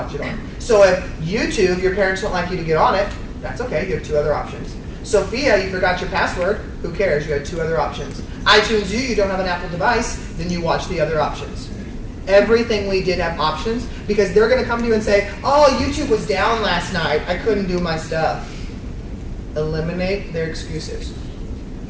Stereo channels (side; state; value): both; identical; correlation 1.00